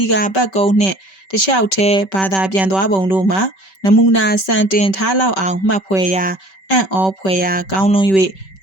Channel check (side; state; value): right; late; 5.2 ms